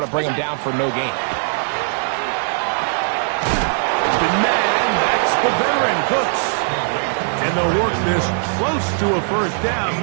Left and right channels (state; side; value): silent; left; 61 dB below the other